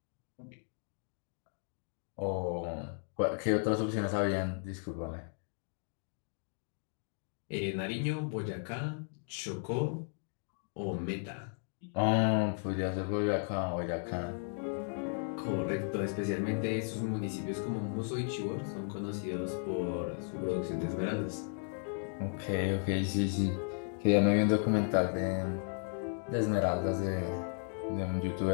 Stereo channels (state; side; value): silent; right; 54 dB below the other